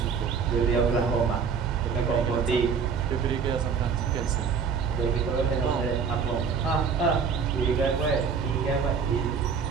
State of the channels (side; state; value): left; quieter; 6.1 dB